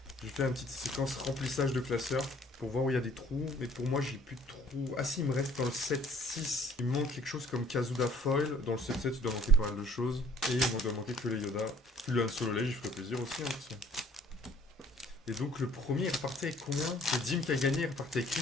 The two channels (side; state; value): both; normal; correlation 0.56